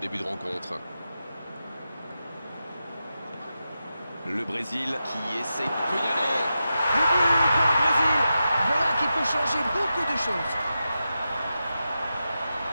de rencontre. Le Brésil qui essaie de y aller. Le but pour le Brésil. Voilà qui peut changer beaucoup de choses.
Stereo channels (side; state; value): both; inverted; correlation -0.90